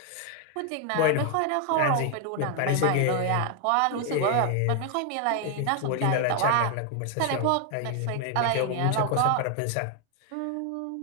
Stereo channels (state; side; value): different; both; correlation 0.00